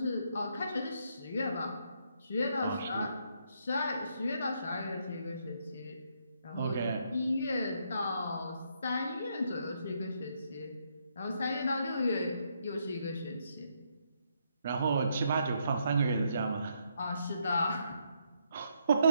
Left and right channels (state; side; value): inverted; both; correlation -0.75